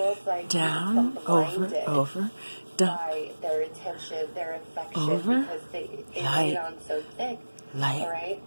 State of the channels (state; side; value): inverted; both; correlation -1.00